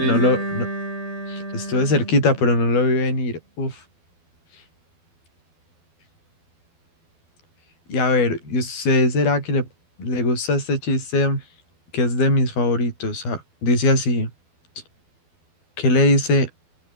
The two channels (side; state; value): right; late; 12 ms